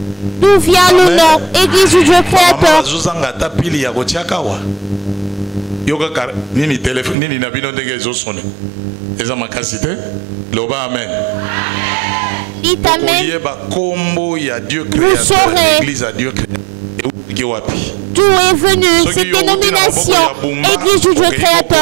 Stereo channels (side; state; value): left; drops out; at 7.2 s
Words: d'où vient le nom Église du Dieu Créateur. Dites Amen. Vous saurez d'où est venue cette dénomination Église du Dieu